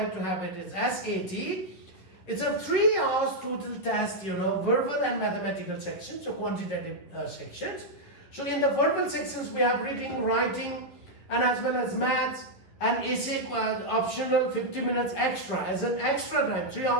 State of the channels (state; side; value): late; right; 11 ms